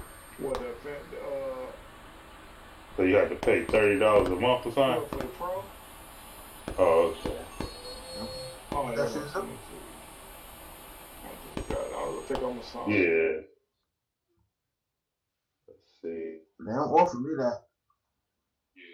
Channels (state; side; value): identical; both; correlation 1.00